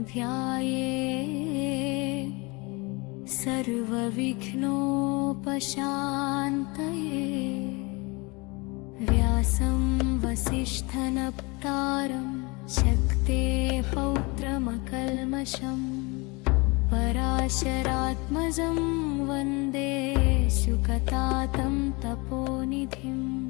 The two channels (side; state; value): right; quieter; 27.0 dB